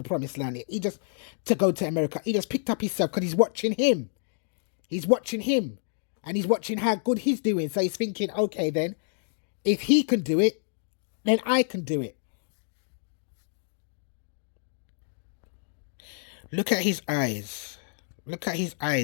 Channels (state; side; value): silent; right; digital silence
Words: promised land. He just to go to America. He just picked up himself because he's watching him. He's watching him, and he's watching how good he's doing. So he's thinking, okay, then if he can do it, then I can do it. Look at his eyes. Look at his